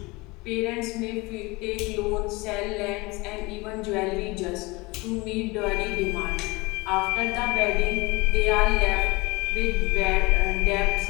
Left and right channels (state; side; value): quieter; right; 24.0 dB